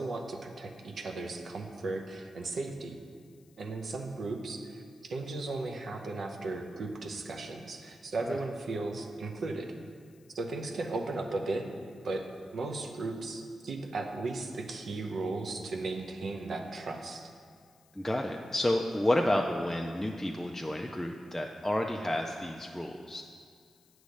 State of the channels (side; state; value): left; noise; hiss, 30 dB below the sound